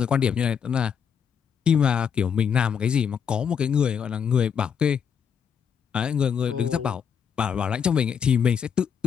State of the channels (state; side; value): quieter; right; 7.3 dB